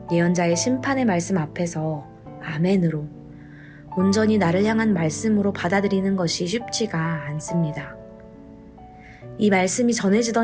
예언자의 심판의 말씀 앞에서 아멘으로 온전히 나를 향한 말씀으로 받아들이는 것이 쉽지가 않습니다. 이 말씀이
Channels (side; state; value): both; identical; correlation 1.00